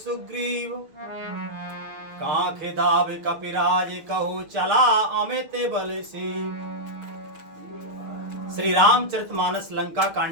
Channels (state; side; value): late; left; 6.5 ms